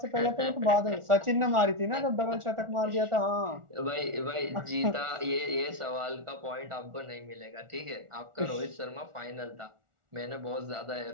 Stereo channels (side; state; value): left; late; 1.4 ms